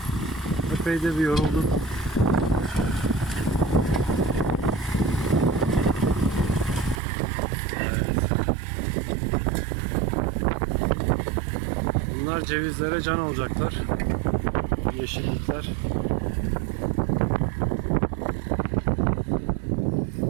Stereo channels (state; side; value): drops out; left; at 7.0 s